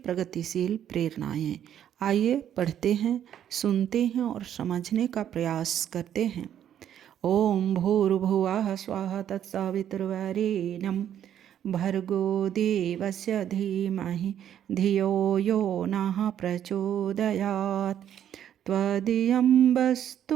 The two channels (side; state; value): left; quieter; 10.1 dB